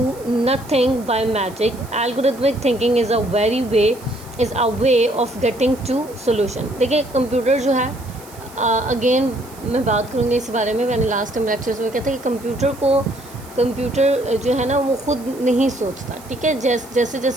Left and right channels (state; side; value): noise; right; hiss, 21 dB below the sound